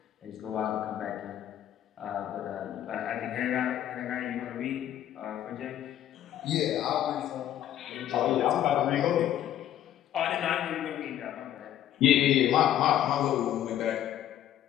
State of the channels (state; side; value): quieter; right; 11.6 dB